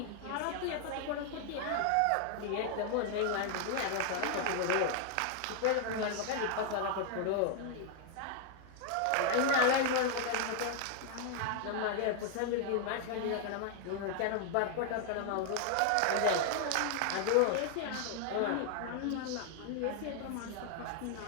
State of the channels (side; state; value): both; different; correlation 0.00